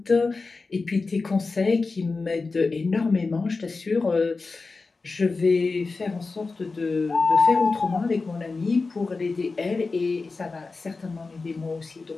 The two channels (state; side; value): quieter; right; 4.0 dB